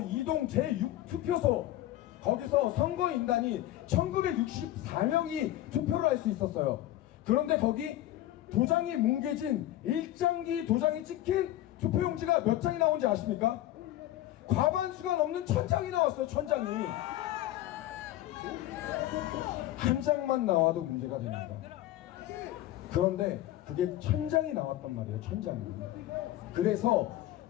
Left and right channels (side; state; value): right; quieter; 14.2 dB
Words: 이동 제6투표소, 거기서 선거인단이 1964명이 투표를 할 수 있었어요. 그런데 거기 도장이 뭉개진 일장기 도장이 찍힌 투표용지가 몇 장이 나온지 아십니까? 과반수가 넘는 1000장이 나왔어요. 1000장이. 한 장만 나와도 문제가 됩니다. 그런데 그게 1000장이 나왔단 말이에요. 1000장이. 그래서